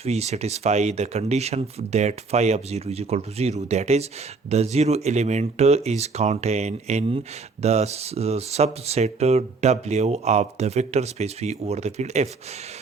satisfy the condition that phi of 0 is equal to 0. That is, the zero element is contained in the subset W of the vector space V over the field F.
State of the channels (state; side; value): quieter; left; 4.2 dB